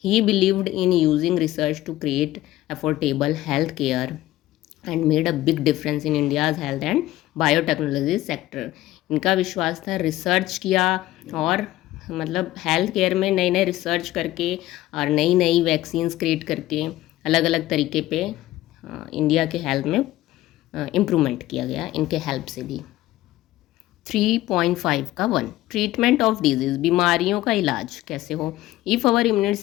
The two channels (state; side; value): quieter; right; 15.8 dB